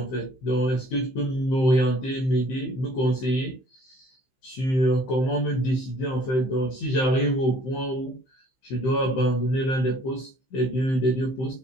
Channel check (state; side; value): late; right; 15 ms